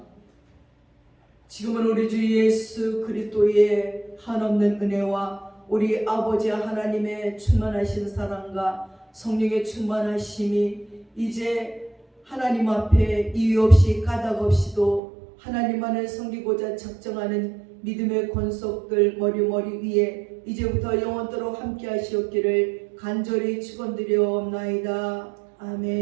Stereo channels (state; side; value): drops out; left; at 15.0 s